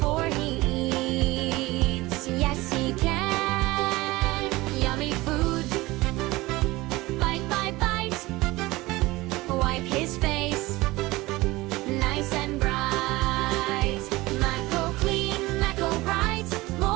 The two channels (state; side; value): quieter; left; 20.1 dB